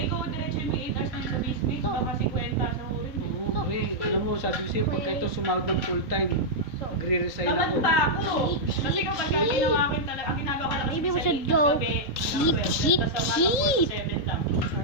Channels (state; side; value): late; right; 3.8 ms